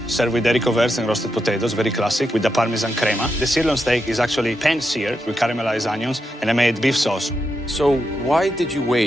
served with haricot verts and roasted potatoes, very classic, with the Parmesan crema. The sirloin steak is actually pan-seared with caramelized onions, and I made beef sauce. So why did you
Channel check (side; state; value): both; normal; correlation 0.85